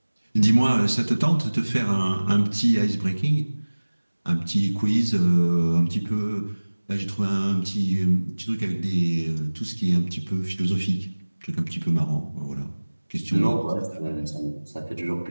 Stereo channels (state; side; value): inverted; both; correlation -1.00